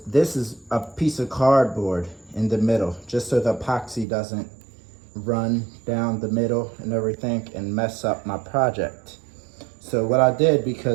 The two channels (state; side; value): drops out; left; at 4.0 s